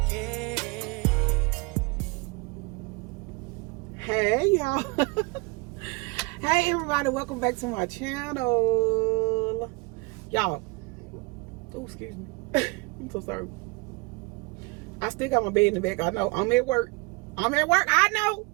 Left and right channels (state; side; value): quieter; left; 27.0 dB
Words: it. Hey y'all. Hey everybody, welcome back to my channel. Y'all, oh excuse me. I'm so sorry. I still got my bed in the back. I know I'm at work. I know.